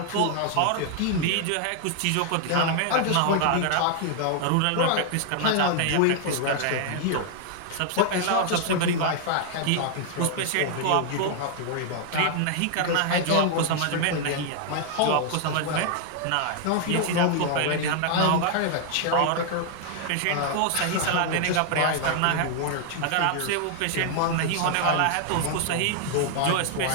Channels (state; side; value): different; both; correlation 0.00